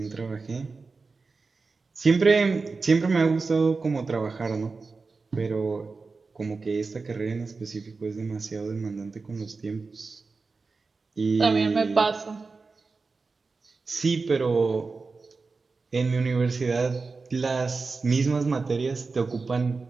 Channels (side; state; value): left; quieter; 4.2 dB